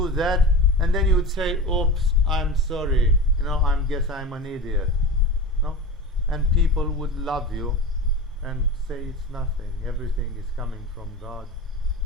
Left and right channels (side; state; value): both; normal; correlation 0.29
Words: that, and then you would say, oops, I'm sorry, I guess I'm an idiot. No? And people would love you and say it's nothing, everything is coming from God,